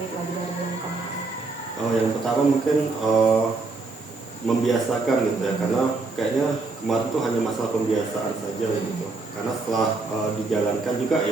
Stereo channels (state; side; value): quieter; left; 3.7 dB